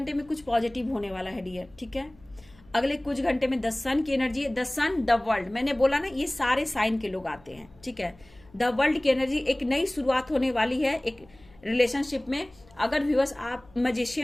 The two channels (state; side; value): noise; left; hum, 27 dB below the sound